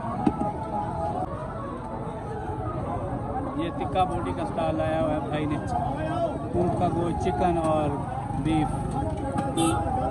ये टिक्का बोटी का स्टॉल लाया हुआ है भाई ने, ऊँट का गोश्त, चिकन और बीफ।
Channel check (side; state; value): both; identical; correlation 1.00